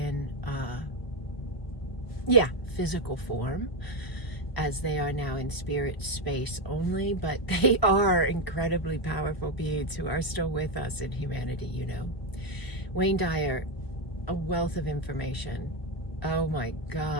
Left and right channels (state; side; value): late; right; 1.2 ms